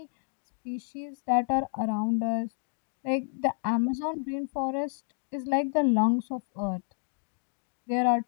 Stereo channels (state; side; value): silent; right; digital silence